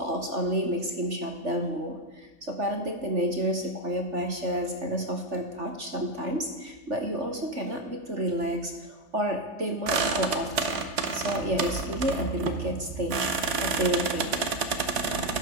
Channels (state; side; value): late; left; 3.8 ms